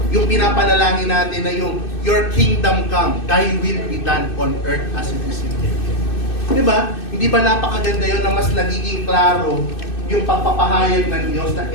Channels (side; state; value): right; late; 2.6 ms